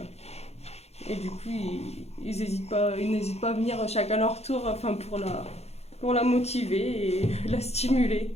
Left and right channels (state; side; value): late; right; 0.31 ms